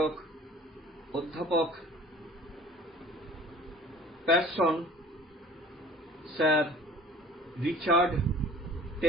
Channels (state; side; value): normal; both; correlation 0.47